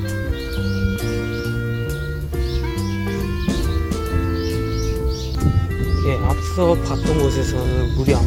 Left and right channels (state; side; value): identical; both; correlation 1.00